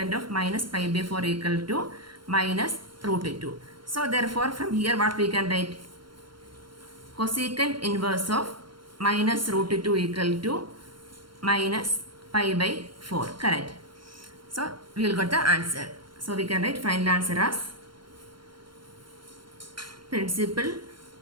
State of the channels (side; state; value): left; late; 0.73 ms